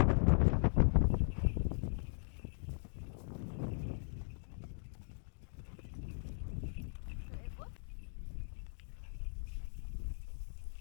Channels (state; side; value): silent; right; digital silence